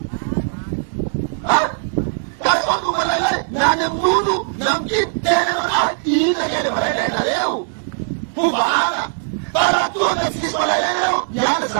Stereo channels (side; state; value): left; silent; digital silence